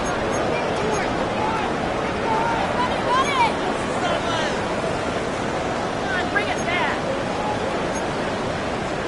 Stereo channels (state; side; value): identical; both; correlation 1.00